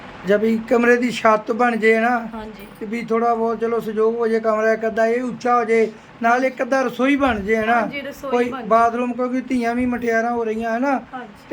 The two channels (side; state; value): both; identical; correlation 1.00